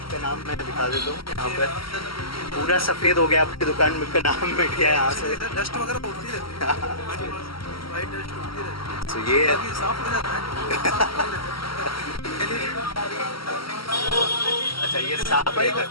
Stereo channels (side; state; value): right; late; 0.74 ms